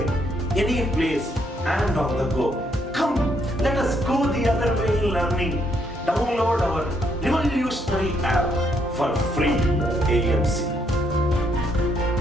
any place, and on the go. Come, let us go the other way in learning. Download our revolutionary app for free AMC.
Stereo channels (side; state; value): both; normal; correlation 0.73